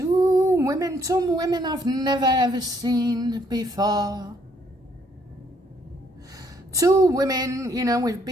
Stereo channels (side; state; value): both; normal; correlation 0.68